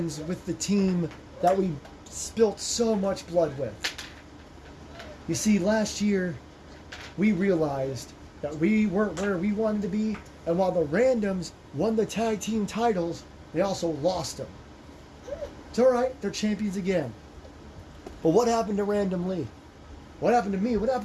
with the team that we spilt so much blood with? You see, last year we realized that we weren't where we wanted to be, and while the Randoms won the tag team titles, they also lost them. It's alright, they're champions again. But what happened to Random Lee? What happened to me? What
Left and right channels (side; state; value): both; identical; correlation 1.00